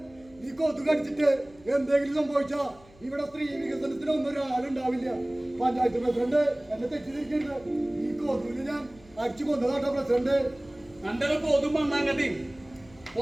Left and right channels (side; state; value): left; noise; hum, 26 dB below the sound